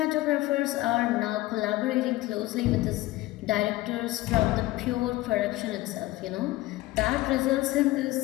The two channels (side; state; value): right; quieter; 18.1 dB